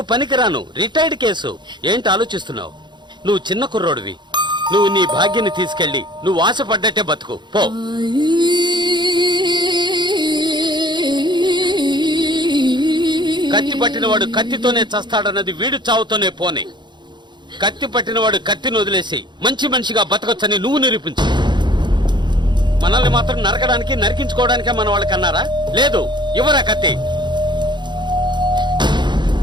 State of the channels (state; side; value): late; left; 0.22 ms